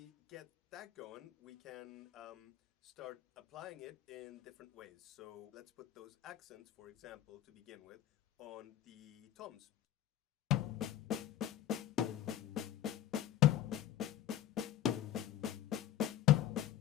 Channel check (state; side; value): quieter; right; 12.1 dB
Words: get that going, we can start applying it in different ways. So let's put those accents, for example, to begin with, on the toms.